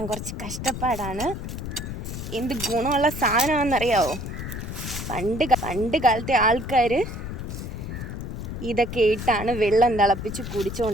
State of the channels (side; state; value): left; noise; rumble, 7 dB below the sound